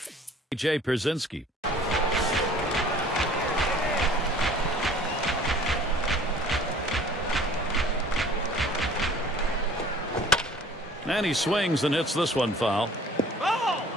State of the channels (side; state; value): both; normal; correlation 0.50